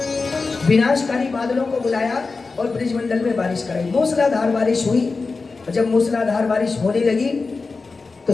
विनाशकारी बादलों को बुलाया और ब्रजमंडल में बारिश कराई। मूसलाधार बारिश हुई, और जब मूसलाधार बारिश होने लगी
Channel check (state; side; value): quieter; right; 4.1 dB